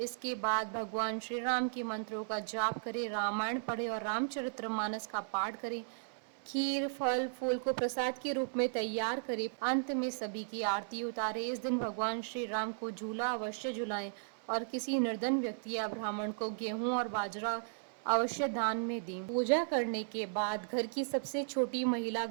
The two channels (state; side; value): silent; left; 54 dB below the other